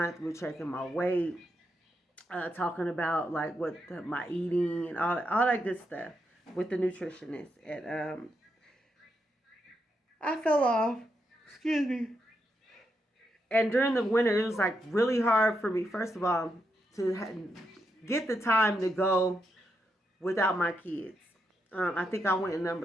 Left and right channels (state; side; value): normal; both; correlation 0.83